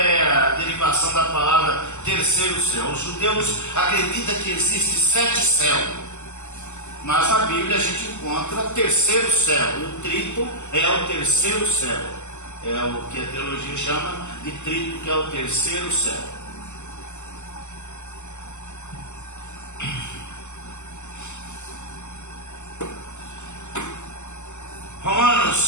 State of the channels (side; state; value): right; late; 0.83 ms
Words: a derivação da palavra terceiro céu. Os judeus acreditam que existe 7 céus. Mas na Bíblia a gente encontra terceiro céu. E o trito é o terceiro céu. É o que a teologia chama de trito, que é o terceiro céu.